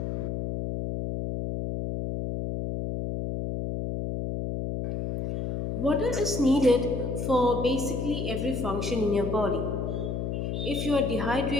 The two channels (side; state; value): left; noise; hum, 3 dB below the sound